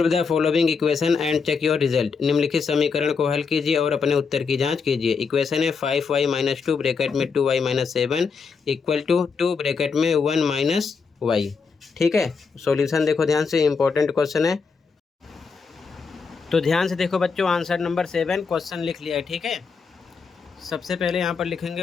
the following equation and check your result. निम्नलिखित समीकरण को हल कीजिए और अपने उत्तर की जांच कीजिए। इक्वेशन है 5y - 2 ब्रैकेट में 2y - 7 इक्वल टू 2 ब्रैकेट में 1 - y। ठीक है, सॉल्यूशन देखो ध्यान से, इंपॉर्टेंट क्वेश्चन है, तो ध्यान से देखो बच्चों, आंसर नंबर 7 क्वेश्चन लिख लिया है, ठीक है। सबसे पहले यहाँ पर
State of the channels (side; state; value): right; quieter; 5.3 dB